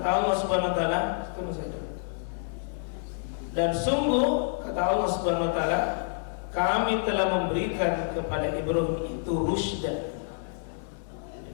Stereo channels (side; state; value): right; silent; digital silence